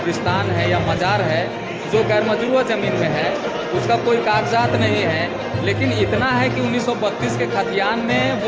है या मज़ार है, जो गैर मजरूआ ज़मीन में है, उसका कोई कागजात नहीं है। लेकिन इतना है कि 1932 के खतियान में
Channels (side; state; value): both; identical; correlation 1.00